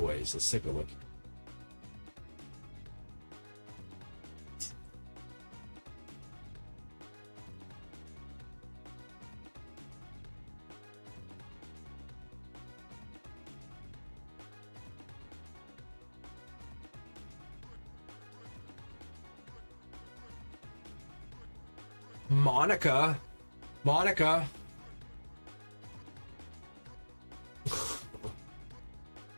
Let's take a look. Monica.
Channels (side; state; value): both; inverted; correlation -1.00